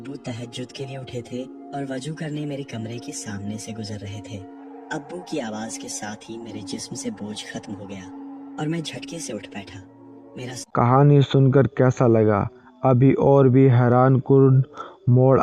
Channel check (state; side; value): identical; both; correlation 1.00